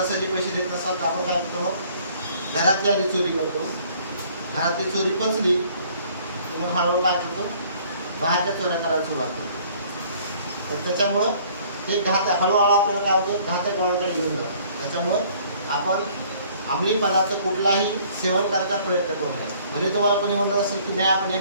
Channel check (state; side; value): inverted; both; correlation -0.57